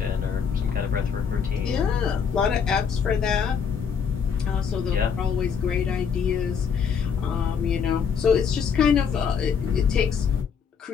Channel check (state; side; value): quieter; right; 6.6 dB